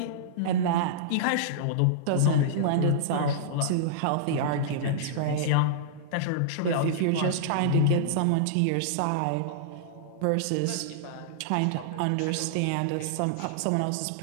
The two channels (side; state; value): both; different; correlation -0.02